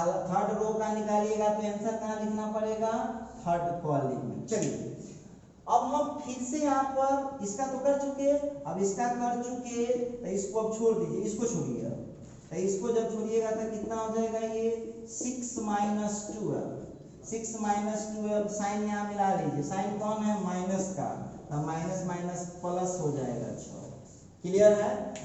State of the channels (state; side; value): identical; both; correlation 1.00